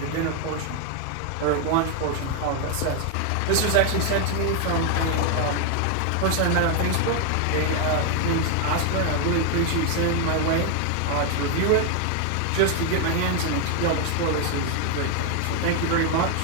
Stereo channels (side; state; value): both; different; correlation 0.01